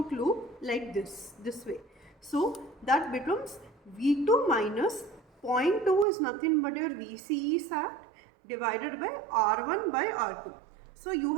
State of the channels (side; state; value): left; drops out; at 6.1 s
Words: loop like this way. So that becomes V2 minus 0.2 is nothing but your VCE sat divided by R1 by R2. So you